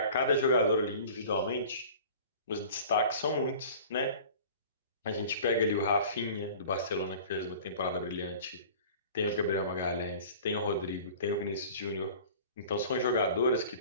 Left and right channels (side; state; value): both; inverted; correlation -0.43